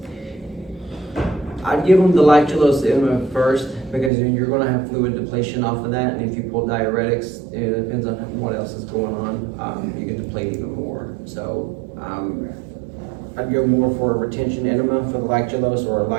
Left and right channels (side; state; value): left; drops out; at 4.1 s